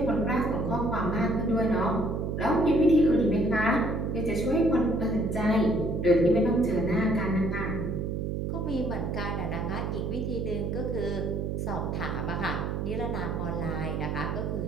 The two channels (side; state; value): right; noise; hum, 2 dB below the sound